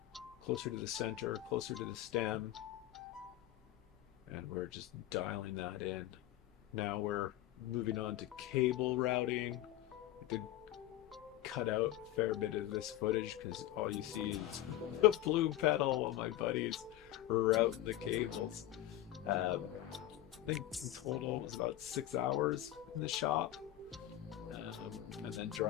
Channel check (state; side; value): quieter; right; 13.8 dB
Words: closer to the center, closer to the stem, and we're just dialing that in. Now we're moving on to cable routing. I did cut out a fair bit of this footage because all you see is the plume pedal while my buddies route the cables. I think in total it was about 6 hours in the shop, and then